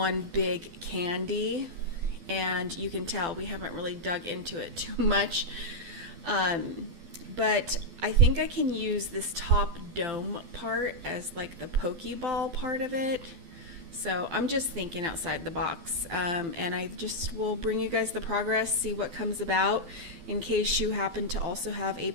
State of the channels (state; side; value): late; left; 12 ms